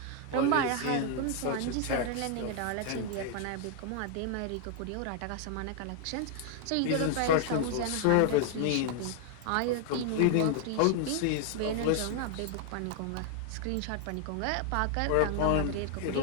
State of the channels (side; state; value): both; different; correlation 0.00